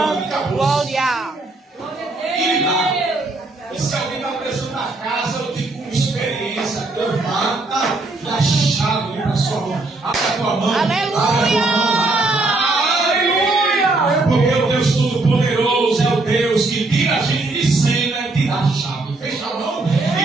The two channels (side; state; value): left; quieter; 3.2 dB